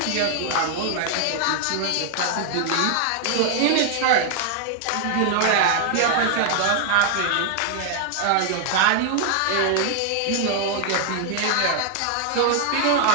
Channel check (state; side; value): different; both; correlation 0.00